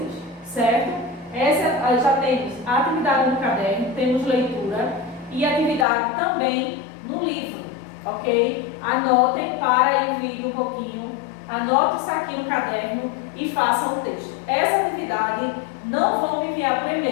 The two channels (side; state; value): right; drops out; at 5.9 s